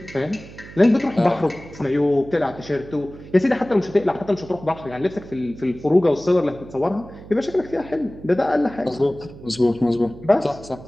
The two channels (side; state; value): right; noise; hum, 17 dB below the sound